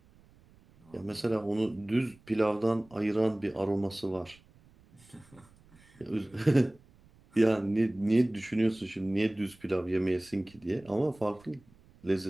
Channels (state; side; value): noise; right; rumble, 28 dB below the sound